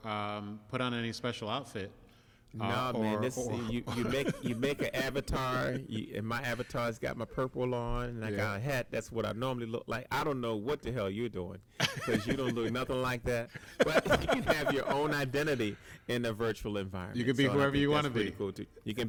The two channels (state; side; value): identical; both; correlation 1.00